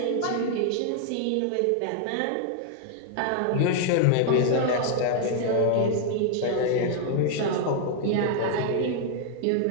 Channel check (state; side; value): different; both; correlation 0.00